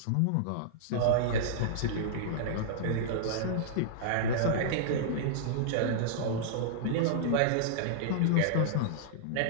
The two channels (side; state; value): both; different; correlation -0.02